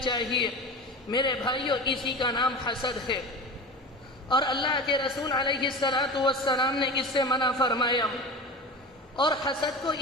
چاہیے۔ میرے بھائیو، اسی کا نام حسد ہے، اور اللہ کے رسول علیہ السلام نے اس سے منع فرمایا۔ اور حسد کو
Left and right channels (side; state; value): both; normal; correlation 0.31